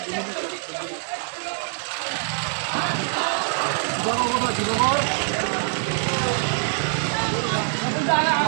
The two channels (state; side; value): silent; left; digital silence